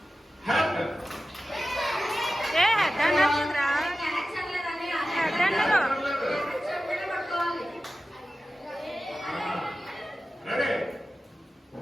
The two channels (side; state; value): both; normal; correlation 0.94